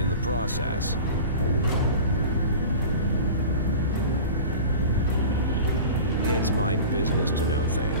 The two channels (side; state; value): both; inverted; correlation -0.36